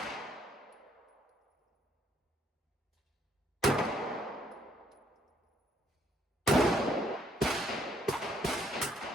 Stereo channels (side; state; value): both; normal; correlation 0.68